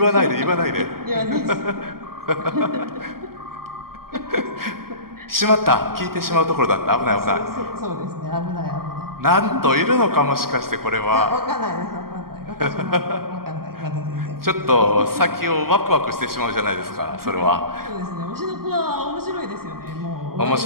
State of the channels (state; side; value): late; left; 0.93 ms